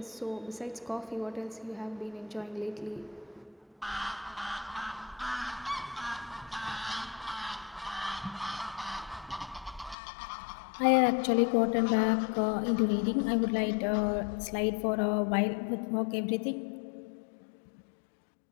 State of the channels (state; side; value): drops out; right; at 10.0 s